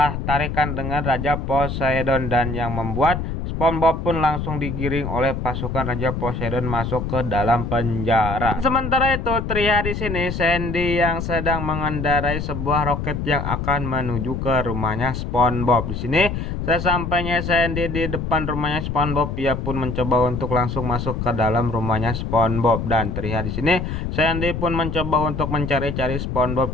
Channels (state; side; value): noise; left; rumble, 4 dB below the sound